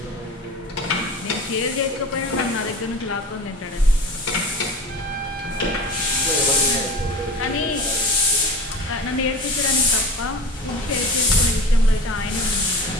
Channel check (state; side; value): normal; both; correlation 0.34